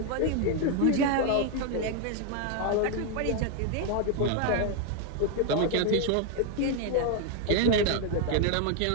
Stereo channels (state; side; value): different; both; correlation 0.01